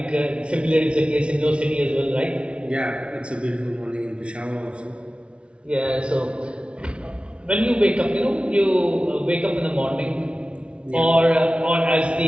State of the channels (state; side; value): late; left; 0.059 ms